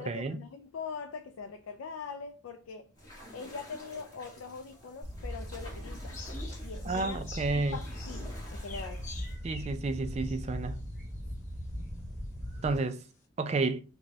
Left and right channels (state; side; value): normal; both; correlation 0.50